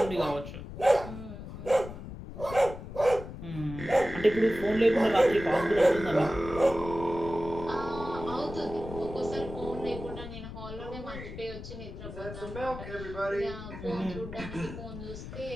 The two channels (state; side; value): noise; left; rumble, 11 dB below the sound